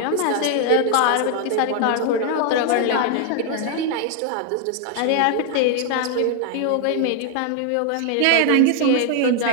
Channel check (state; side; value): different; both; correlation 0.00